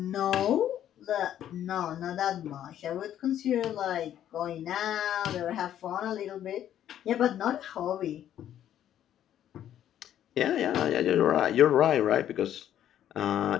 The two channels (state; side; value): quieter; right; 11.0 dB